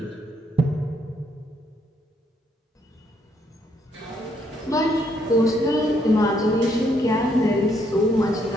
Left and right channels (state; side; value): normal; both; correlation 0.71